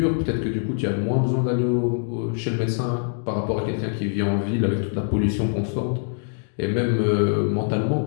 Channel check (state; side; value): silent; right; 63 dB below the other